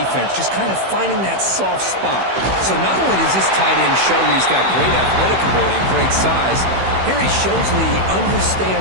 just kind of finding that soft spot. So not only does this tight end show that he's got great athletic ability and great size, here he shows that he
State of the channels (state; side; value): late; left; 16 ms